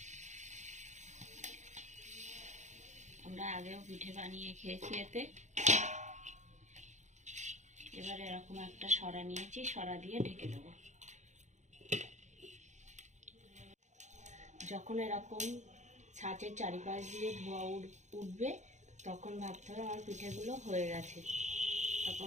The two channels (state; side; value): late; left; 0.34 ms